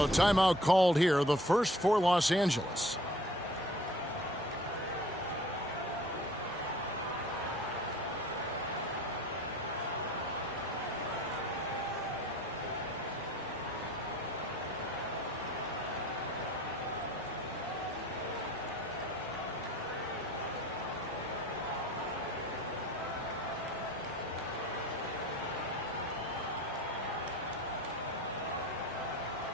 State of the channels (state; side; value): normal; both; correlation 0.50